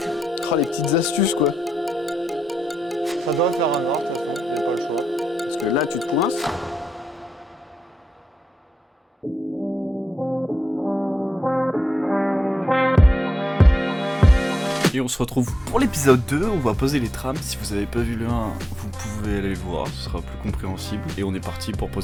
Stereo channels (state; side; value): normal; both; correlation 0.87